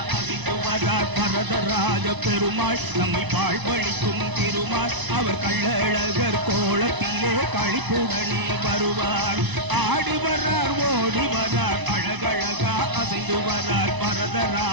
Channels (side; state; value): left; late; 1.0 ms